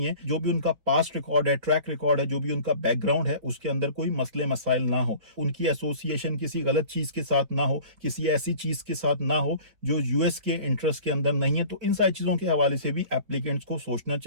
जो भी उनका पास्ट रिकॉर्ड है, ट्रैक रिकॉर्ड है, जो भी उनका बैकग्राउंड है, उसके अंदर कोई मसले मसाइल ना हो, उनकी एसोसिएशन किसी गलत चीज के साथ ना हो, किसी ऐसी चीज के साथ ना हो जो यूएस के इंटरेस्ट के अंदर नहीं है। तो इन सारी चीजों के हवाले से भी एप्लीकेंट्स को सोचना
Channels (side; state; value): left; late; 4.6 ms